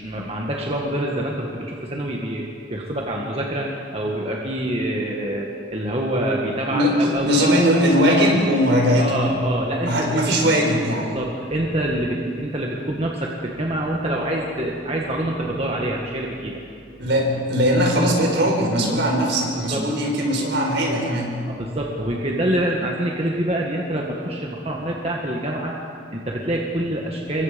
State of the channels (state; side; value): normal; both; correlation 0.41